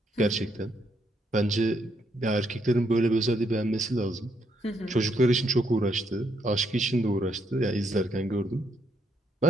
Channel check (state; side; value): normal; both; correlation 0.75